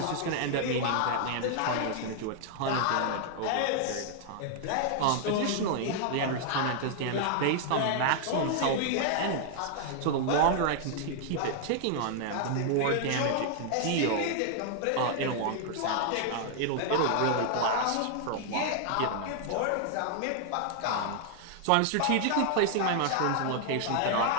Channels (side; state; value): both; different; correlation 0.00